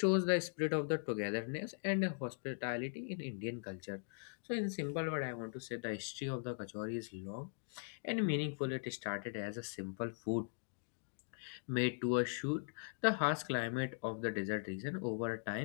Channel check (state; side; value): silent; right; digital silence